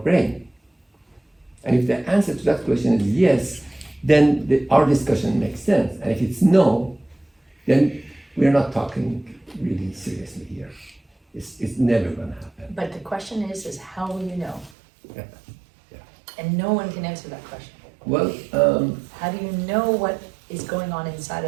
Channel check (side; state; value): left; drops out; at 14.7 s